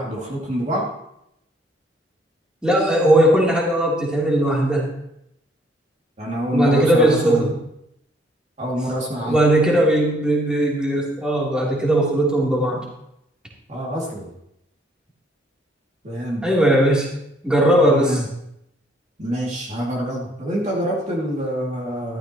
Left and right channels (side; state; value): both; normal; correlation 0.65